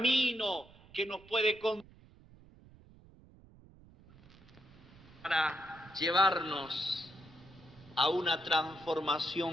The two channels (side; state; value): right; noise; rumble, 24 dB below the sound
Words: que nos puede conducir para llevarnos a una